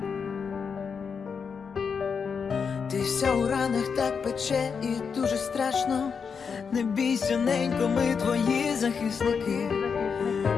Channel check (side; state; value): right; quieter; 6.0 dB